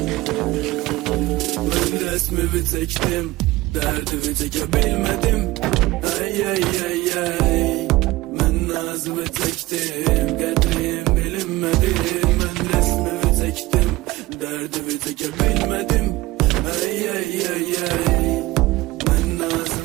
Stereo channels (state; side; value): quieter; left; 19.1 dB